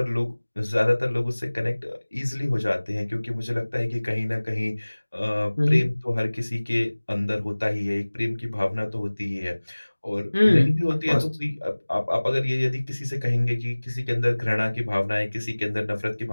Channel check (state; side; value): inverted; both; correlation -1.00